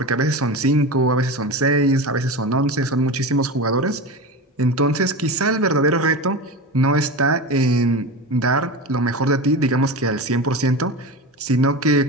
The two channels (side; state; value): both; normal; correlation 0.25